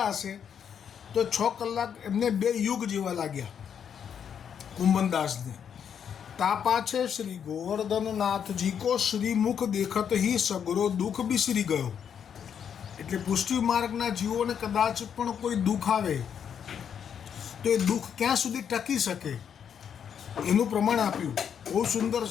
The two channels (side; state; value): right; quieter; 8.0 dB